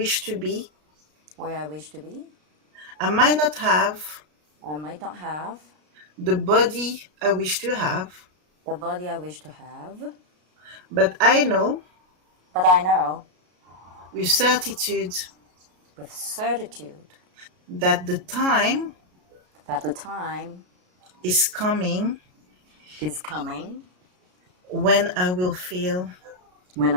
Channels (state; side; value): late; left; 33 ms